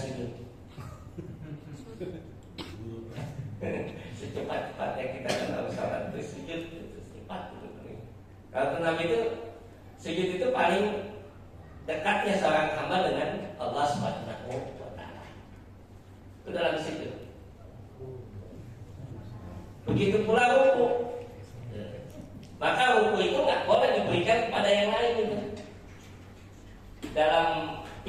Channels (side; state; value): both; identical; correlation 1.00